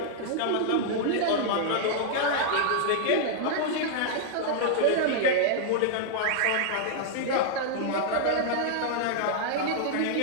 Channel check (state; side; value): different; both; correlation -0.01